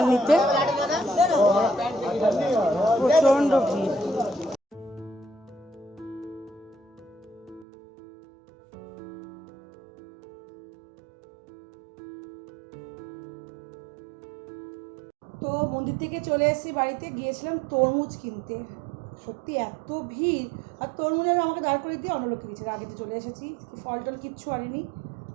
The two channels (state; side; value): drops out; left; at 7.7 s